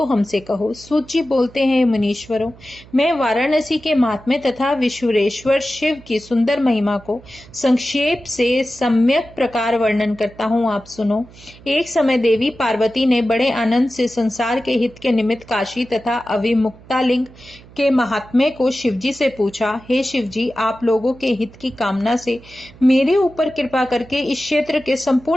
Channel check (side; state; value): right; noise; hum, 22 dB below the sound